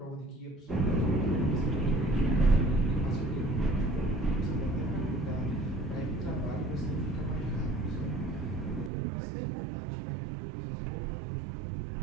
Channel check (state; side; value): drops out; left; at 8.9 s